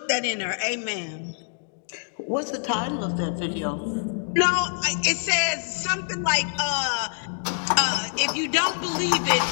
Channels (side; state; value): right; silent; digital silence